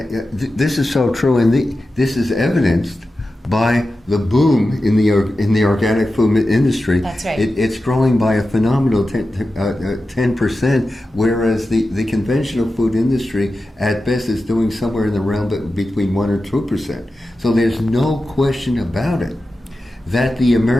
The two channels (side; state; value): both; normal; correlation 0.92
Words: is so true, and this is evidenced by the boom in the organic food industry. That's right. It's growing by a phenomenal 10%, whereas the conventional food industry at best is doing somewhere in the realm between 1 or 2%. So there's no question about it that the